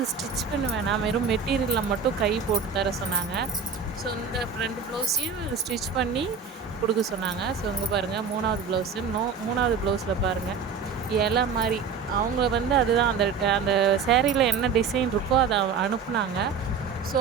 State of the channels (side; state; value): left; quieter; 5.8 dB